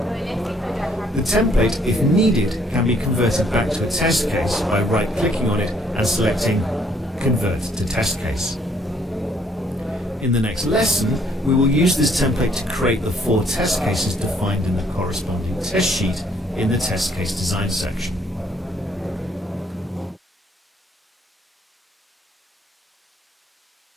The template, if needed, can be converted back to a test case by right-clicking on it and selecting Convert to Test Case. In the next lesson, we will use this template to create the 4 test cases defined in the corresponding test sheet in the test case design section.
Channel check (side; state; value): both; normal; correlation 0.66